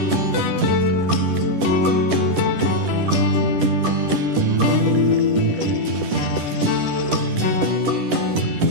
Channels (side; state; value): left; late; 10 ms